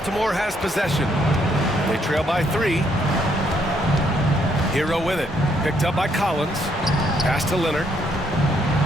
has possession. They trail by 3. Hero with it. Picked up by Collins. Pass to Leonard.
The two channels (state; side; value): normal; both; correlation 0.71